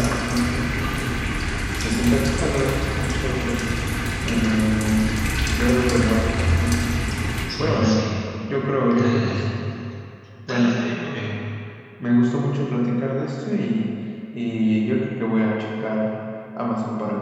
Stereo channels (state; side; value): identical; both; correlation 1.00